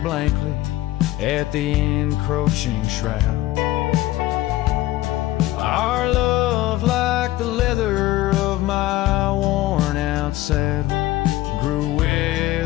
at the encroaching shroud. Our love, like the leather of my worn out saddle, grew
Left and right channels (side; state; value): right; quieter; 16.3 dB